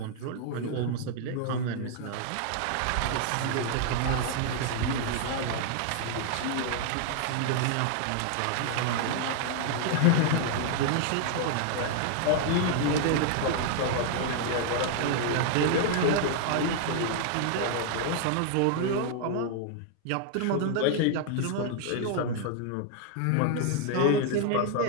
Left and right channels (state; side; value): different; both; correlation 0.00